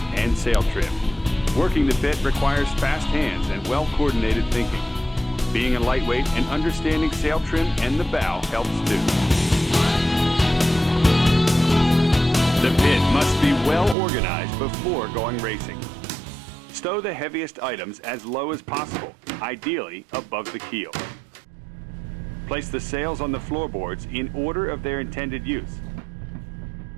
and sail trim. Working the pit requires fast hands and well-coordinated thinking. Being a lightweight and understanding sail trim and the bow helps too. The pit must be well organized before going racing. Stow the heaviest items as low as possible, ideally above the keel. Place the sails on the floorboards in order of their intended use.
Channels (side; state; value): left; drops out; at 14.0 s